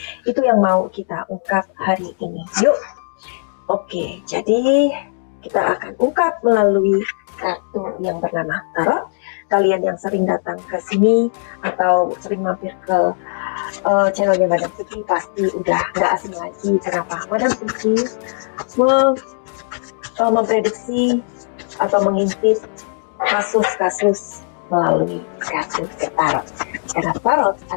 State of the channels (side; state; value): right; silent; digital silence